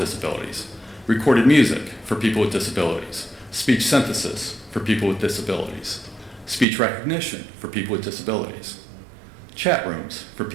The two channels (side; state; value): left; drops out; at 6.7 s